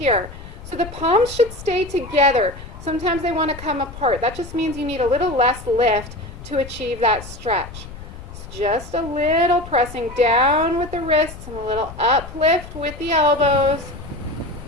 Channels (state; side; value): noise; left; rumble, 14 dB below the sound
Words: So the palms should stay together. Sometimes they want to come apart. That just means you need a little less lift to achieve that stretch. So just a little pressing down with the wrists and a little uplift with the elbows.